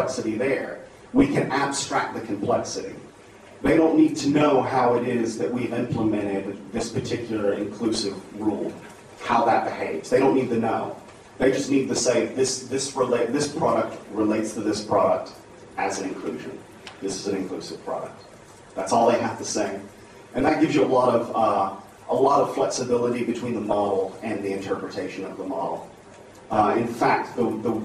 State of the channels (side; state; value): both; identical; correlation 1.00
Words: there, we can abstract the complexity. They don't need to know how it is that we've implemented this particular inclusive rule, how that behaves. They don't need to know. They just need to say, this product relates to this product as an inclusion. This is an inclusive product. That's all they have to say. And that gives you a lot of flexibility between the model and the interpretation of the model. In fact, the